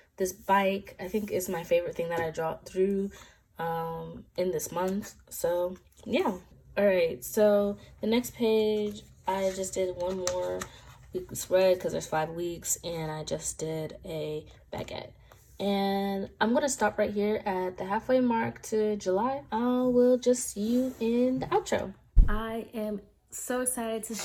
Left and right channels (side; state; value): both; identical; correlation 1.00